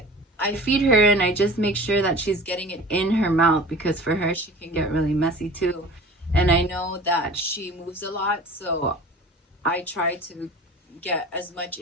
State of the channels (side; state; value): both; normal; correlation 0.41